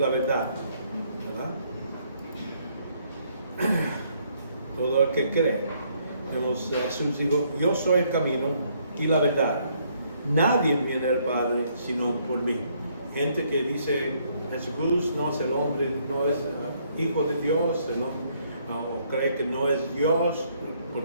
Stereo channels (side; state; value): both; inverted; correlation -0.69